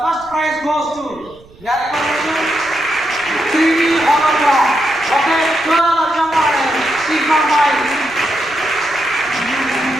first prize goes to TV hologram. Okay, Sigma Mike.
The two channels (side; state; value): right; noise; rumble, 25 dB below the sound